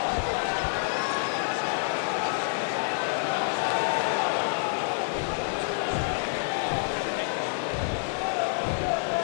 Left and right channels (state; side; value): silent; right; digital silence